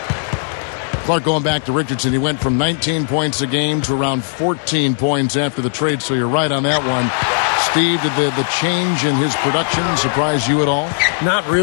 Clark, going back to Richardson, he went from 19 points a game to around 14 points after the trade, so you're right on that one. Steve, did the change in his production surprise you at all? Not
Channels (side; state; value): right; silent; 67 dB below the other